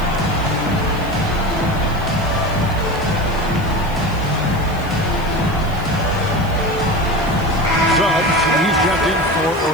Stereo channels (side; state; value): right; noise; hiss, 21 dB below the sound